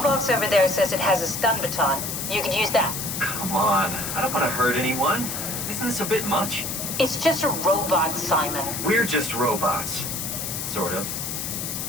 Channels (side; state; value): left; noise; hiss, 4 dB below the sound